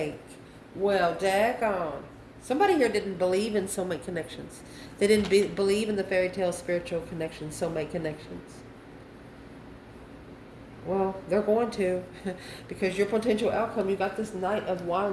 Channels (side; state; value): both; identical; correlation 1.00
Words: Well, daggone. Somebody here didn't believe in soulmate connections. They didn't believe in the fairy tale spiritual connections, soulmate connections. Well, they're going to. Because your potential outcome, you got this Knight of